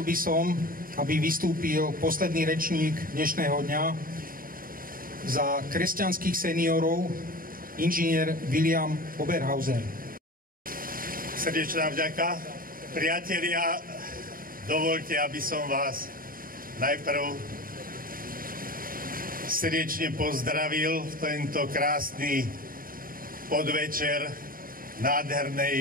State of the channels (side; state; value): left; late; 0.41 ms